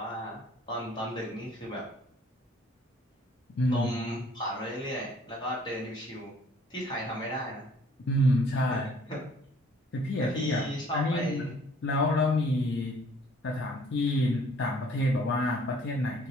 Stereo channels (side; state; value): both; normal; correlation 0.57